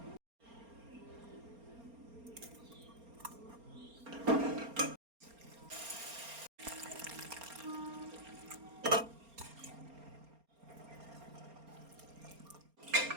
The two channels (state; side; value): late; left; 4.3 ms